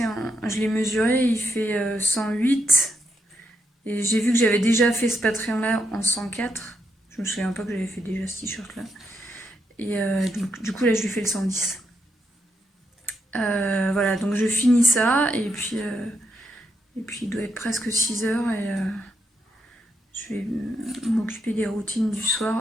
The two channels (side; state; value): both; normal; correlation 0.80